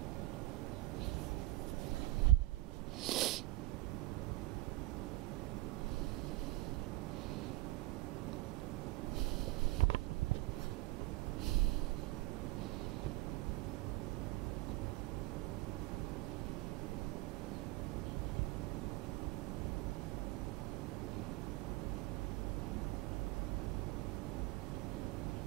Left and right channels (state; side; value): quieter; left; 18.4 dB